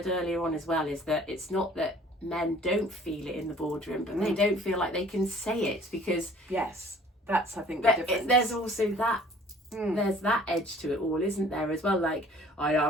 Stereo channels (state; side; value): normal; both; correlation 0.53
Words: earlier on as well is that it's not that men don't feel it in the boardroom, but they don't feel like they can say it, because Yes, that's, I think, the difference. there's also that there's that edge to it all, isn't there, as well? Like, I